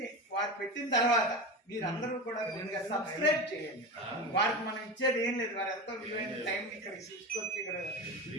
వారు పెట్టిన తర్వాత మీరందరూ కూడా సబ్స్క్రైబ్ చేయండి. వారికి మనం ఇచ్చేది ఏం లేదు, వారు ఎంతో విలువైన టైం ఇక్కడ తీసుకొచ్చి ఇక్కడ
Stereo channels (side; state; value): both; normal; correlation 0.24